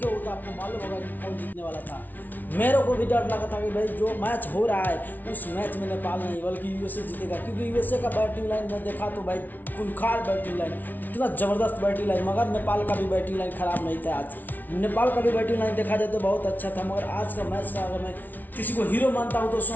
हो तो आपको मालूम होगा कि कौन जीतने वाला था। मेरे को भी डर लगा था कि भाई जो मैच हो रहा है उस मैच में नेपाल नहीं बल्कि यूएसए जीतेगा, क्योंकि यूएसए का बैटिंग लाइन में देखा तो भाई खूंखार बैटिंग लाइन, इतना ज़बरदस्त बैटिंग लाइन। मगर नेपाल का भी बैटिंग लाइन खराब नहीं था आज। नेपाल का भी बैटिंग लाइन देखा जाए तो बहुत अच्छा था। मगर आज का मैच का अगर मैं किसी को हीरो मानता हूँ तो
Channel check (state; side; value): late; right; 0.083 ms